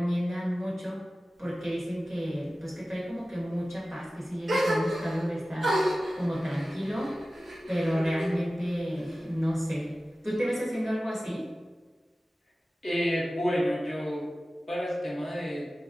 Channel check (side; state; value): both; normal; correlation 0.96